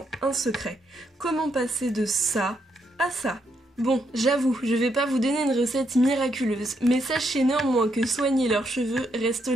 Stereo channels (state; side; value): normal; both; correlation 0.77